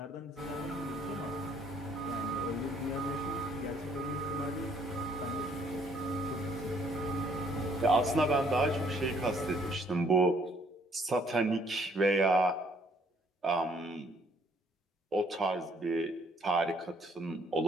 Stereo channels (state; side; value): normal; both; correlation 0.64